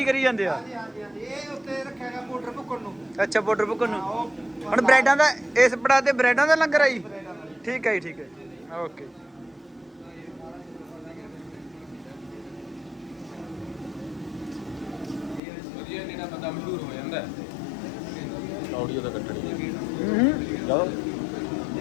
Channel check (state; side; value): drops out; right; at 15.4 s